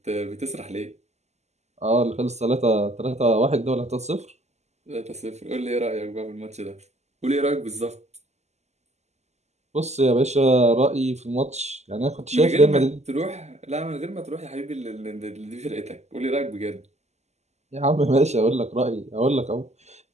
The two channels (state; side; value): late; left; 0.33 ms